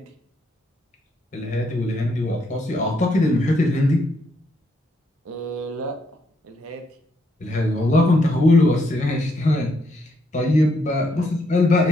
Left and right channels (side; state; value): both; normal; correlation 0.75